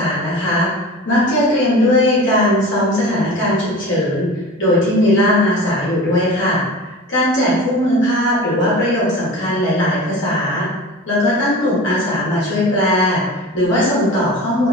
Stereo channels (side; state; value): both; normal; correlation 0.35